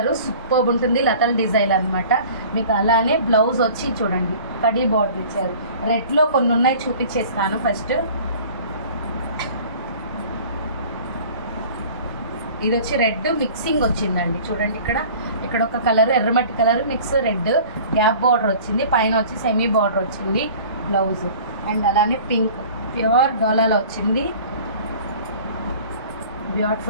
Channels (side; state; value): both; inverted; correlation -0.45